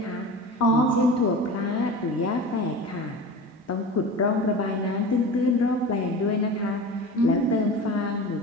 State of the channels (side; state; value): both; normal; correlation 0.33